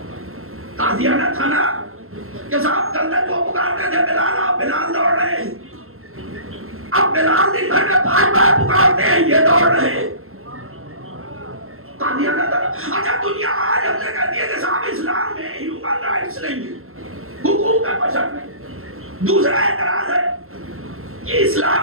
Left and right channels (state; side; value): late; left; 0.62 ms